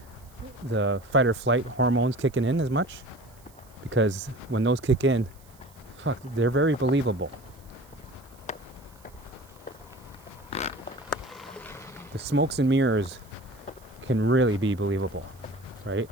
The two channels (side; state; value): right; noise; hiss, 27 dB below the sound